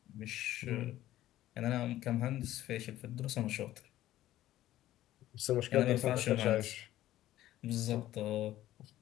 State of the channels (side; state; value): right; quieter; 14.2 dB